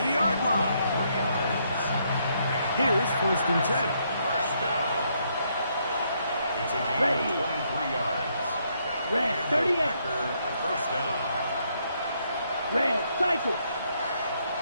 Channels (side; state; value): both; inverted; correlation -0.73